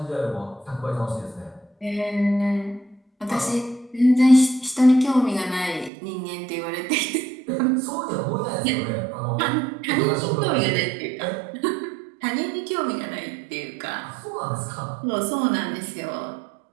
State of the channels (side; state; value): left; drops out; at 5.9 s